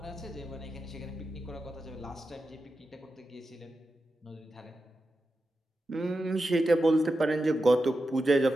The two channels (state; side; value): normal; both; correlation 0.90